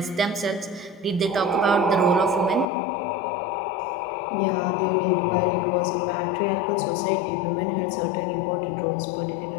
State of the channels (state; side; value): drops out; right; at 2.7 s